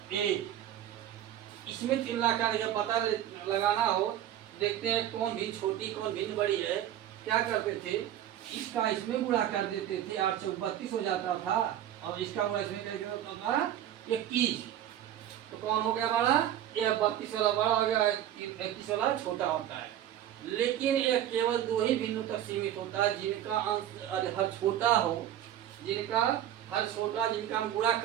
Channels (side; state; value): left; quieter; 11.5 dB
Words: इसमें तुलना करके पता लगाना हो, देखते हैं कौन भिन्न छोटी कौन भिन्न बड़ी है। क्या करते थे, इसका इसमें गुणा कर देते थे, 8 से 32 हो जाता था, और इसका गुणा इसमें करके होता था 21। तो कौन हो गया हमारा, यह 32 वाला बड़ा हो गया, 31 वाला छोटा होता है। लेकिन यह केवल दो ही भिन्नों तक सीमित होता है, जिनका अंश हर छोटा हो, जिनका हर छोटा, जिनका हम गुणा